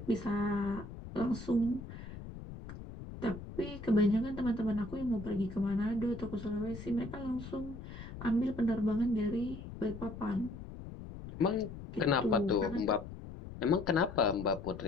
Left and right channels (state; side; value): noise; left; rumble, 12 dB below the sound